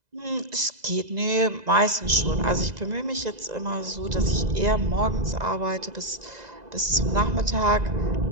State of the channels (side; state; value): left; late; 2.0 ms